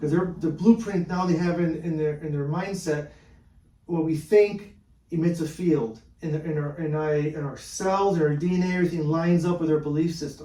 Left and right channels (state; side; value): identical; both; correlation 1.00